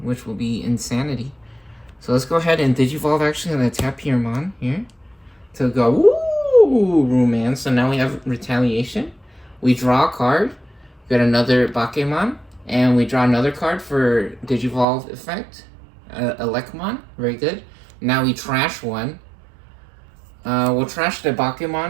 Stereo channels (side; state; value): left; drops out; at 14.9 s